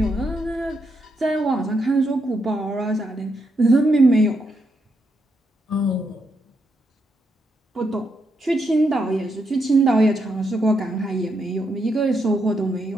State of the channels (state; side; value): normal; both; correlation 0.80